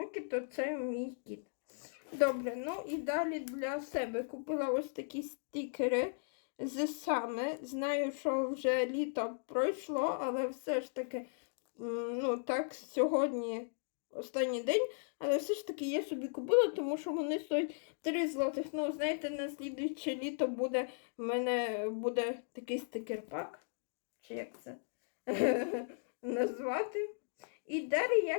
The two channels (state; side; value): silent; right; digital silence